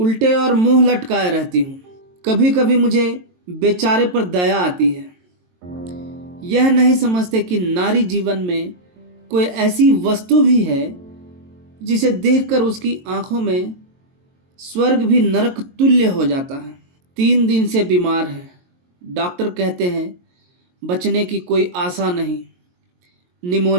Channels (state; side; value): late; left; 22 ms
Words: और मुंह लटकाए रहती हूँ। कभी कभी मुझे बेचारे पर दया आती है। यह नहीं समझते कि नारी जीवन में कोई ऐसी वस्तु भी है जिसे देखकर उसकी आंखों में स्वर्ग भी नरक तुल्य हो जाता है। 3 दिन से बीमार है। डॉक्टर कहते हैं बचने की कोई आशा नहीं,